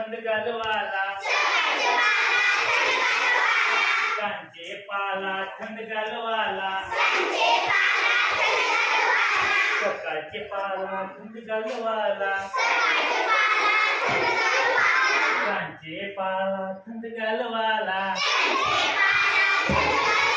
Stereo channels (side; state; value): both; identical; correlation 1.00